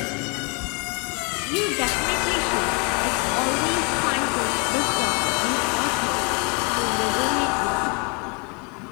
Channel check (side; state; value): right; quieter; 33.4 dB